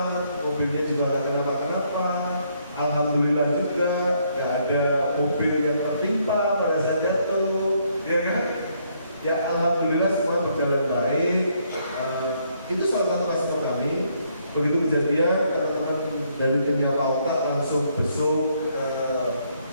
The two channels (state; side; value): inverted; both; correlation -0.71